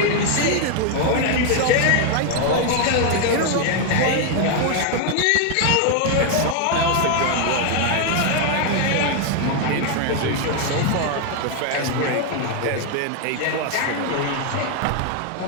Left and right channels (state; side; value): different; both; correlation 0.01